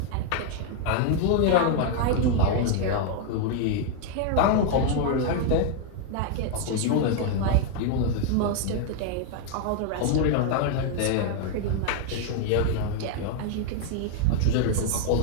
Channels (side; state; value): both; different; correlation 0.00